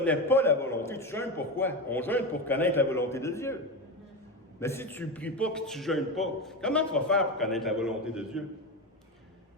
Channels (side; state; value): both; normal; correlation 0.19